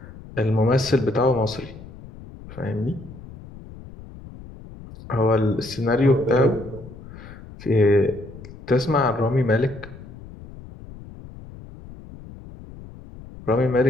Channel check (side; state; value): left; noise; rumble, 16 dB below the sound